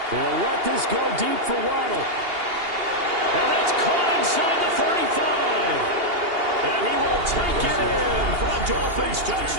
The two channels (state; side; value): late; left; 2.8 ms